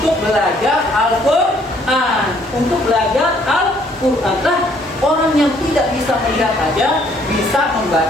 belajar Al-Quran. Untuk belajar Al-Quran. Nah, Orang yang tidak bisa melihat aja bisa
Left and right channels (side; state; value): both; normal; correlation 0.64